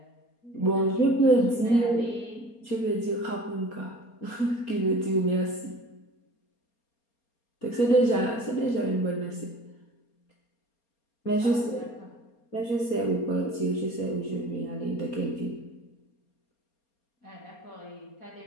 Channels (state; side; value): late; right; 4.3 ms